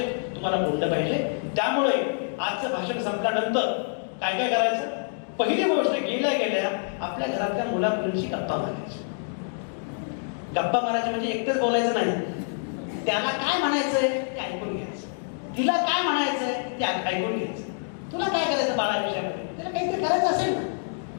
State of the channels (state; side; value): silent; right; digital silence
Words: तुम्हाला बोललं पाहिजे. त्यामुळे आजचं भाषण संपल्यानंतर काय काय करायचं? पहिली गोष्ट, गेल्या आपल्या घरातल्या मुला मुलींशी गप्पा मारायची. गप्पा मारायचे म्हणजे एकटेच बोलायचं नाही, त्याला काय म्हणायचंय ते ऐकून घ्यायचं, तिला काय म्हणायचंय ते ऐकून घ्यायचं. तुला काय करायचं बाळा विषयामध्ये, तिला काहीतरी करायचं असेल ना,